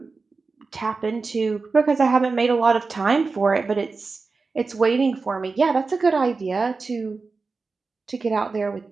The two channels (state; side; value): quieter; left; 4.2 dB